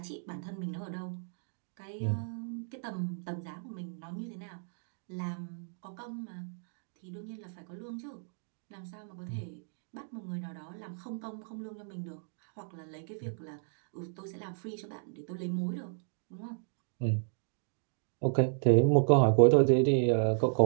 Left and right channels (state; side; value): silent; left; digital silence